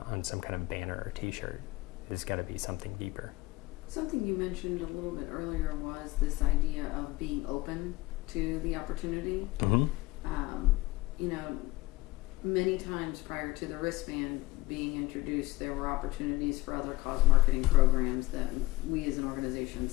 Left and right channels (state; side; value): quieter; right; 19.3 dB